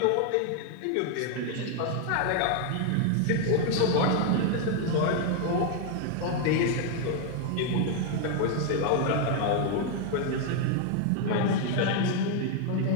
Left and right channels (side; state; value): both; different; correlation 0.00